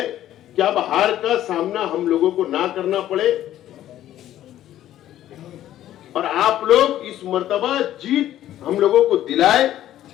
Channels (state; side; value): quieter; right; 12.6 dB